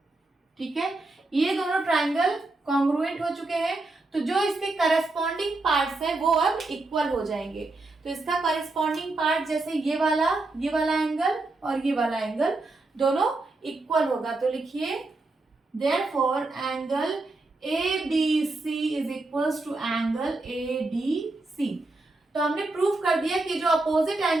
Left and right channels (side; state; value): left; quieter; 3.1 dB